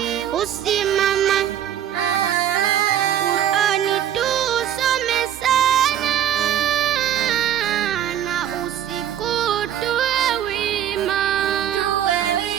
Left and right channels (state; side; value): quieter; left; 10.4 dB